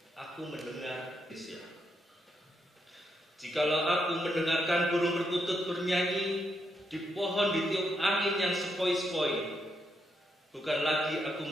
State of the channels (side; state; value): both; normal; correlation 0.80